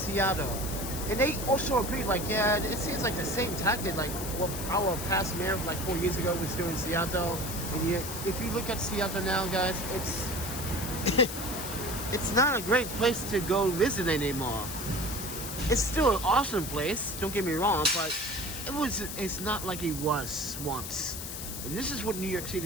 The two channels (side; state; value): left; noise; hiss, 7 dB below the sound